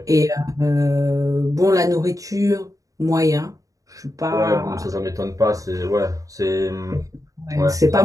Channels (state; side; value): late; left; 0.16 ms